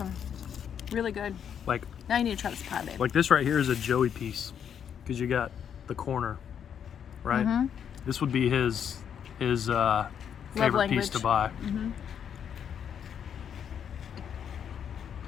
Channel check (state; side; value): quieter; right; 8.3 dB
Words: Really good. Like Now you need to try this pie, babe. this right here is a Joey piece because you got the corner, right? This would be his favorite piece language. to buy.